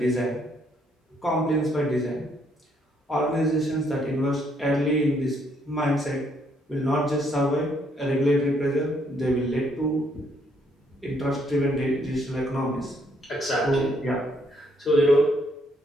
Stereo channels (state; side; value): normal; both; correlation 0.70